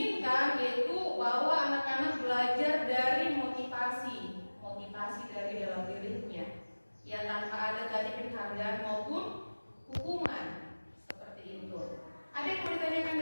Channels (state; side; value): inverted; both; correlation -1.00